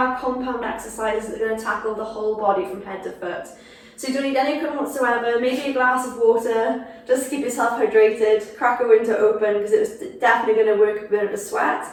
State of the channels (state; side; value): identical; both; correlation 1.00